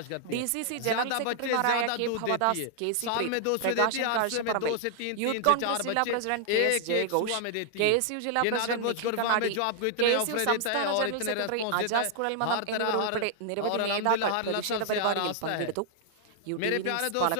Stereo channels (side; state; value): both; different; correlation -0.01